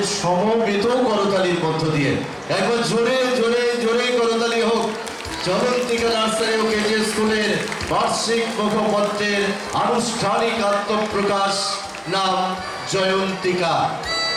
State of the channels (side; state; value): both; identical; correlation 1.00